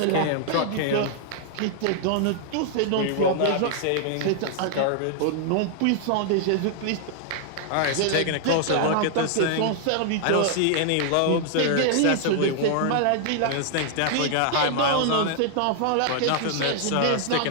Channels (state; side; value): different; both; correlation -0.01